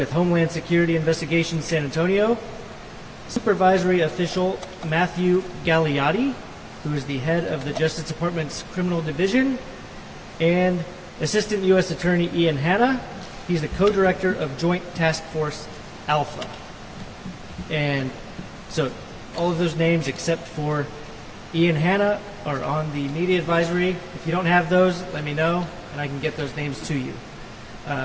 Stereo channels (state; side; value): identical; both; correlation 1.00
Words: Homeland Security Investigations San Antonio. Supervisory Official Matthew Gagliotti, who is the head of the Justice Department's Criminal Division, and Assistant U.S. Attorney Ian Hanna. He's the co-director of Joint Task Force Alpha. And so all of those names except for Ian Hanna are on the media advisory. If you don't have those, let me know, and I can get those names to you.